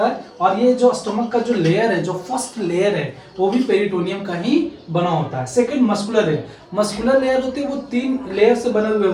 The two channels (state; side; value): identical; both; correlation 1.00